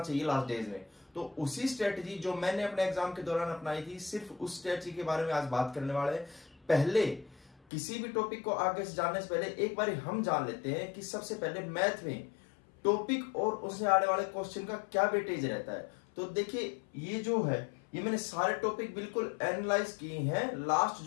चाहिए लास्ट डेज में। तो उसी स्ट्रेटजी जो मैंने अपने एग्जाम के दौरान अपनाई थी, सिर्फ उस स्ट्रेटजी के बारे में आज बात करने वाले हैं। पहले किसी भी टॉपिक को आगे से जानने से पहले एक बार हम जान लेते हैं कि सबसे पहले मैथ में टॉपिक और उससे आने वाले क्वेश्चन का क्या वेटेज रहता है। तो देखिए ये जो है, ये मैंने सारे टॉपिक बिल्कुल एनालाइज किए हैं। लास्ट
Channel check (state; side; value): drops out; right; at 7.6 s